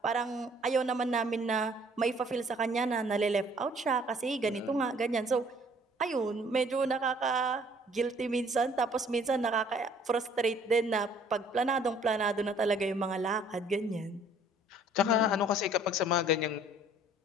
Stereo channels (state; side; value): normal; both; correlation 0.57